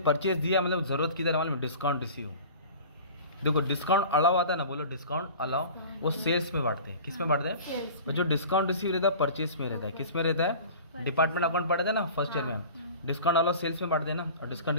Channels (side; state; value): both; inverted; correlation -0.40